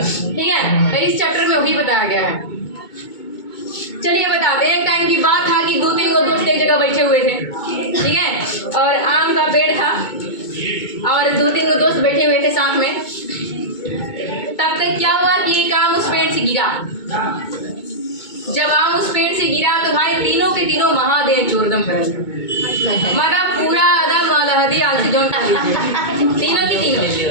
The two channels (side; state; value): right; late; 2.2 ms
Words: ठीक है, तो इस चैप्टर में वही बताया गया है। चलिए बताते हैं। एक टाइम की बात था कि 2-3 दोस्त एक जगह बैठे हुए थे। ठीक है, और आम का पेड़ था और 2-3 दोस्त बैठे हुए थे साथ में। तब तक क्या हुआ कि एक आम उस पेड़ से गिरा। जब आम उस पेड़ से गिरा तो भाई तीनों के तीनों महादेव चोरदम फैल गए। मतलब पूरा आदम अलहदी आलसी जोन खा लीजिए, तीनों की तीनों